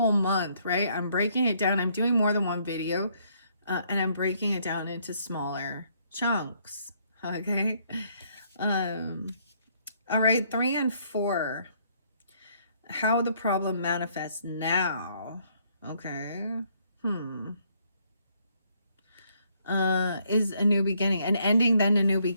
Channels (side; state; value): both; inverted; correlation -0.68